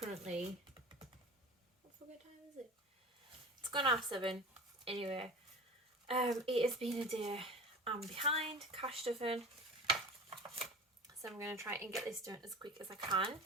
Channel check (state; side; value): normal; both; correlation 0.35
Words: what time is it? It's gone half 7. Anyway, it has been a day. I'm behind cash stuffing, so I'm going to try and get this done as quick as I can.